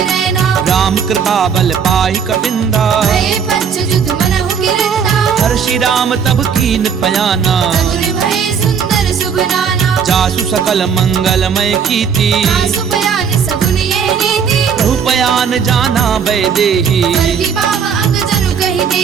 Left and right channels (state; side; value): quieter; left; 6.9 dB